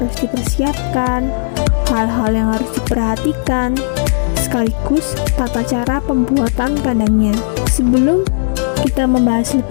dipersiapkan, hal-hal yang harus diperhatikan, sekaligus tata cara pembuatan kandangnya. Sebelum kita membahas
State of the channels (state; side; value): silent; right; digital silence